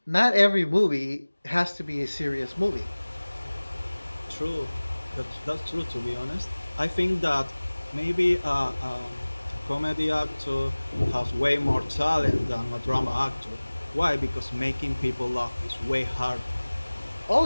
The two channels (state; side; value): inverted; both; correlation -1.00